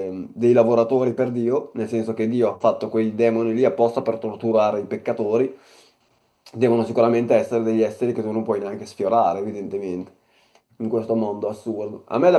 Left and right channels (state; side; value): identical; both; correlation 1.00